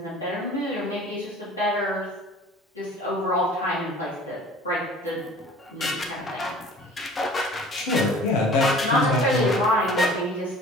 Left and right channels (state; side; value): normal; both; correlation 0.46